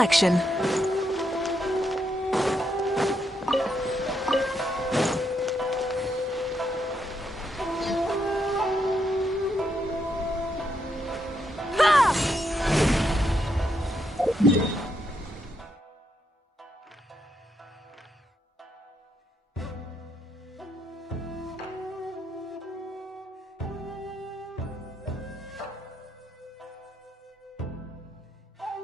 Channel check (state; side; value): normal; both; correlation 0.79